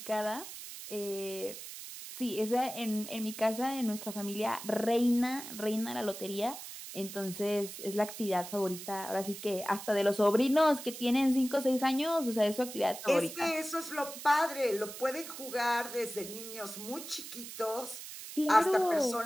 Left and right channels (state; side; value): noise; right; hiss, 11 dB below the sound